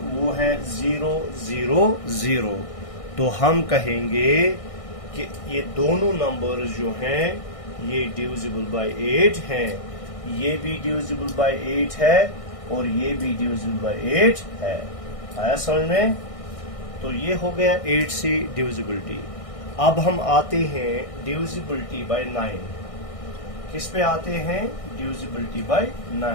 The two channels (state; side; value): late; right; 1.6 ms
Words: वो हैं 0, 0, 0. तो हम कहेंगे कि ये दोनों नंबर्स जो हैं ये डिविजिबल बाय 8 हैं. ये भी डिविजिबल बाय 8 है और ये भी डिविजिबल बाय 8 है. आया समझ में? तो ये हो गया 8 से डिविजिबिलिटी. अब हम आते हैं डिविजिबिलिटी बाय 9. किस पे आते हैं? Divisibility bye